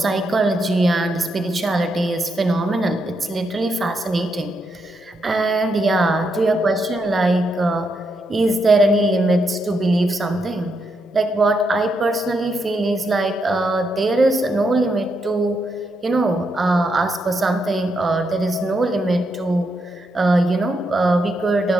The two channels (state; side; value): normal; both; correlation 0.81